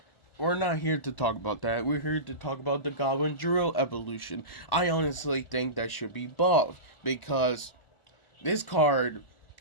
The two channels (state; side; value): late; right; 1.4 ms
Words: we're not here to talk about that. We're here to talk about the Goblin Drill evolution. I honestly think that should be buffed because this card